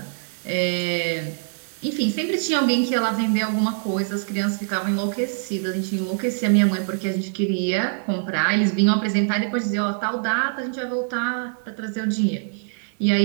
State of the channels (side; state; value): left; silent; digital silence